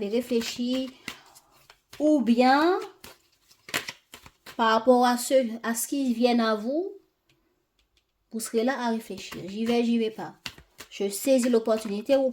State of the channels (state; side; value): identical; both; correlation 1.00